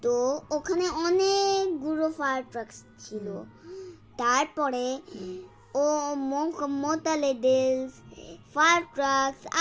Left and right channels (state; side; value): identical; both; correlation 1.00